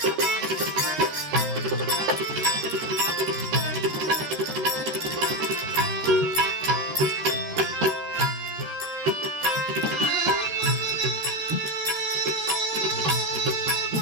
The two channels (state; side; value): late; left; 13 ms